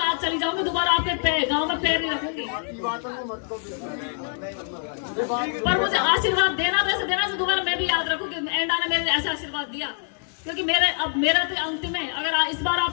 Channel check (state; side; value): silent; right; 55 dB below the other